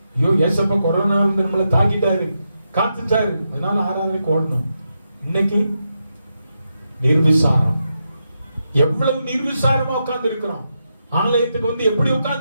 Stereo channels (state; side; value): inverted; both; correlation -0.85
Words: ஐயோ ஏசப்பா கொரோனா வந்து நம்மளை தாக்கிட்டாரு, காத்துட்டாரு, அதனால ஆராதனைக்கு ஓடணும். இன்னைக்கு நிர்விசாரம். எவ்வளவு நிர்விசாரமா உட்கார்ந்து இருக்கிறோம். ஆலயத்துக்கு வந்து எப்படி